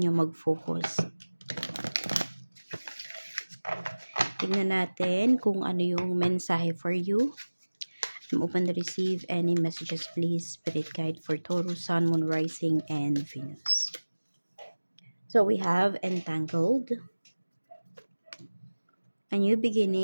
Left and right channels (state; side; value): inverted; both; correlation -1.00